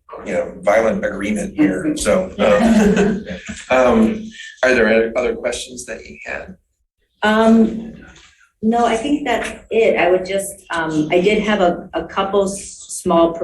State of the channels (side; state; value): both; identical; correlation 1.00